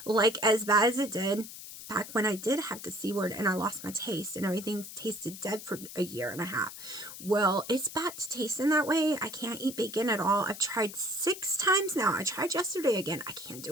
Like, as bad as it did back when I did have the C word and I lost my taste and everything tasted dead for a year and a half. Well, it's back to tasting that way. I can't eat bacon at all. I've tried 6 times now. I tried yesterday again. I can't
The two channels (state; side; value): noise; left; hiss, 12 dB below the sound